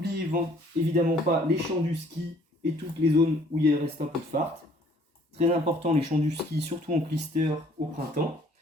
évidemment pas les champs du ski et toutes les zones où il reste un peu de fart. Très important, les champs du ski, surtout en clister au printemps,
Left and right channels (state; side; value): normal; both; correlation 0.59